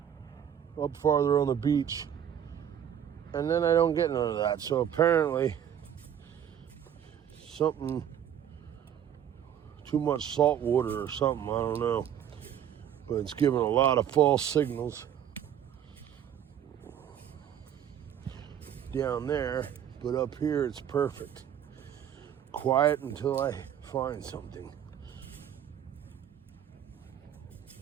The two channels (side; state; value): left; quieter; 9.5 dB